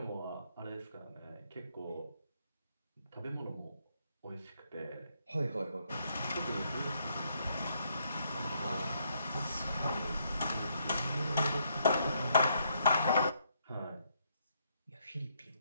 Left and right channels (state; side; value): inverted; both; correlation -0.73